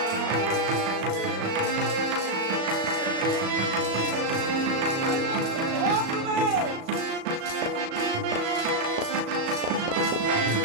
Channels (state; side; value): late; left; 36 ms